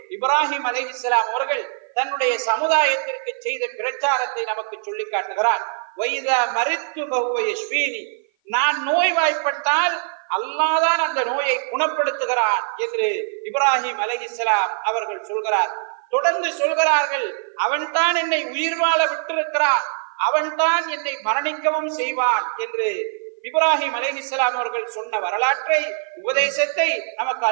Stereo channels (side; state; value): left; silent; 55 dB below the other